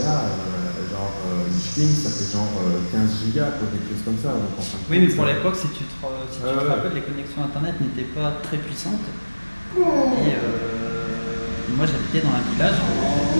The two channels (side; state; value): both; inverted; correlation -1.00